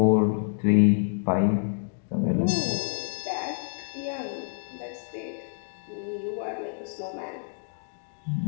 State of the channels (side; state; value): right; silent; 60 dB below the other